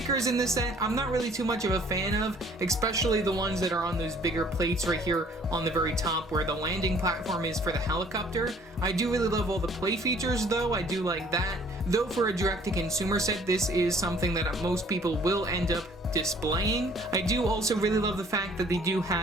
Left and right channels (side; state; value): both; normal; correlation 0.57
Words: in this set, I'm not really too much of a fan of, especially the ones that are on those bigger plates right here on the very top where the landing platform is for the helicopter. I do really love all the play features though, I do like that. Though for a direct-to-consumer set, this is something that most people will end up displaying. I do also really love the fact that they do